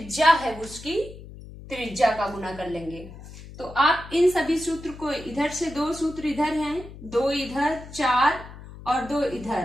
है उसकी त्रिज्या का गुना कर लेंगे। तो आप इन सभी सूत्र को, इधर से 2 सूत्र इधर हैं, 2 इधर, 4 और 2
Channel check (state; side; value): noise; left; hum, 15 dB below the sound